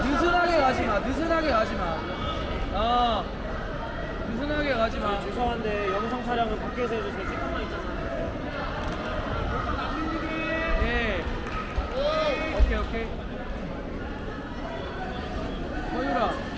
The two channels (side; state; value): both; identical; correlation 1.00